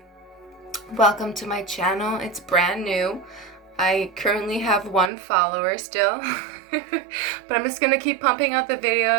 Welcome to my channel. It's brand new. I currently have 1 follower still, but I'm just gonna keep pumping out the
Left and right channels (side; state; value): left; drops out; at 5.1 s